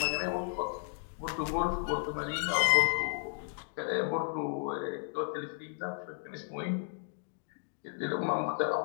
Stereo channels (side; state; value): right; silent; 55 dB below the other